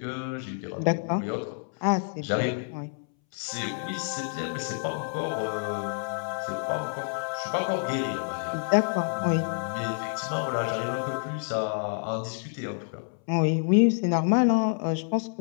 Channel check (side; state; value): right; silent; 59 dB below the other